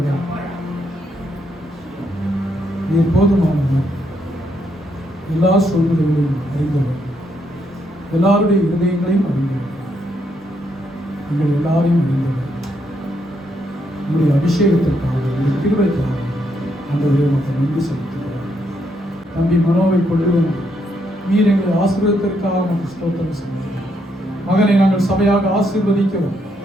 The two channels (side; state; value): both; normal; correlation 0.76